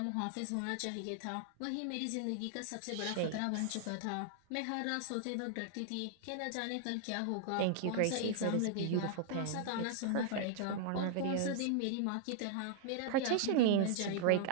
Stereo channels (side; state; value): both; different; correlation -0.01